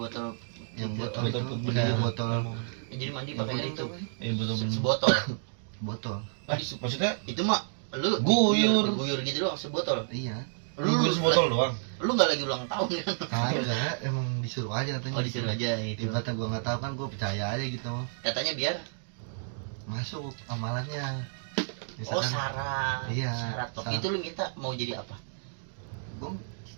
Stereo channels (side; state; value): left; silent; digital silence